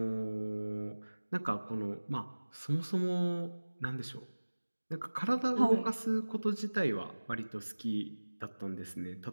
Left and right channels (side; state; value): both; inverted; correlation -1.00